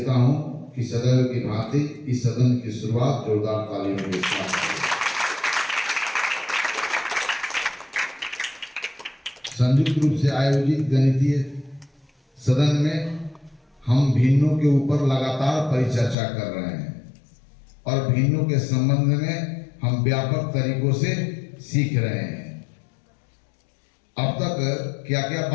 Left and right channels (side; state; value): right; drops out; at 16.2 s